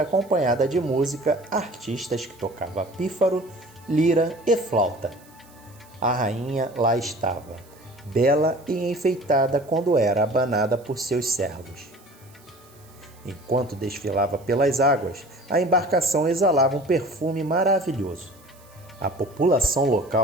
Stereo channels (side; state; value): right; noise; hiss, 27 dB below the sound